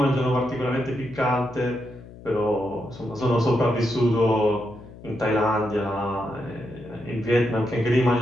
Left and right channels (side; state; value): left; noise; hum, 18 dB below the sound